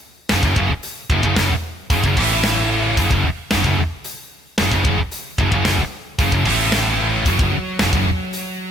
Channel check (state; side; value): normal; both; correlation 0.72